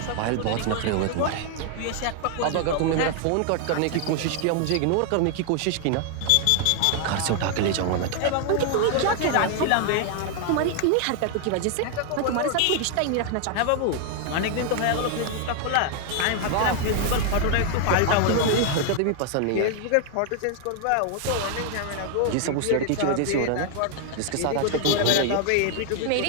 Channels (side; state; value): both; different; correlation 0.00